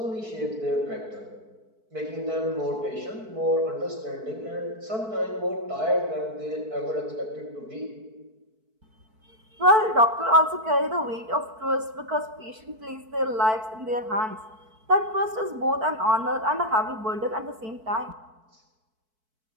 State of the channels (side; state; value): left; late; 4.6 ms